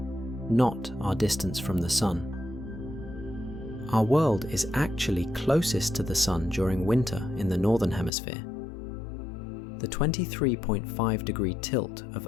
not our distance from the Sun. Our world is actually closest to the Sun during winter in the Northern Hemisphere. The 23.5-degree tilt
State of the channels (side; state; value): right; drops out; at 8.1 s